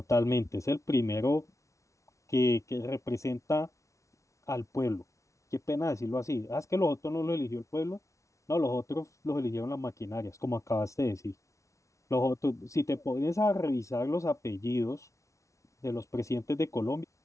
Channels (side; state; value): right; late; 0.15 ms